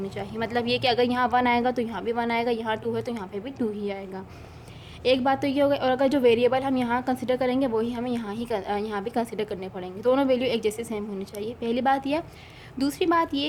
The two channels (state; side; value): identical; both; correlation 1.00